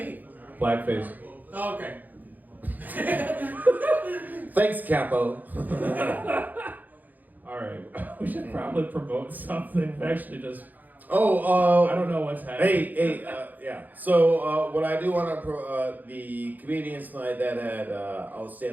Blackface. Oh, okay. Thanks, Capo. All right, we should probably promote something. Actually, just I don't know what's happening. Yeah. So what I do want to the comedians tonight that had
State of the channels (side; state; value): left; late; 0.083 ms